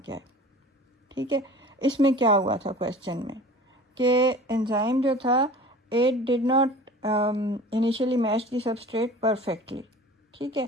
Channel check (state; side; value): normal; both; correlation 0.41